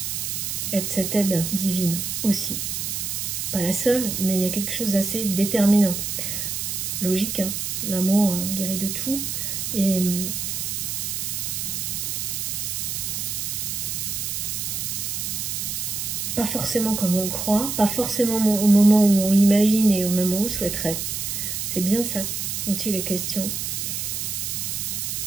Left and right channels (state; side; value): noise; right; hiss, 3 dB below the sound